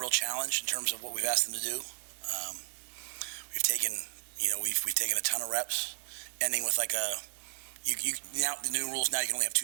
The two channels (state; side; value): silent; left; digital silence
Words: challenge in terms of what we've asked them to do. We've taken a ton of reps, ending with like now the new rules now you can only have